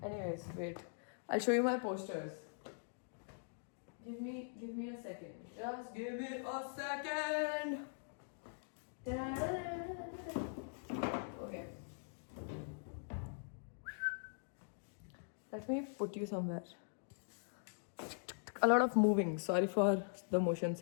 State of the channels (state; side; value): silent; right; digital silence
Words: Anyways, wait. I'll show you my posters. Give me a second. Just give me a second. Okay. Let me put you somewhere. A lot of moving. Sorry for the motion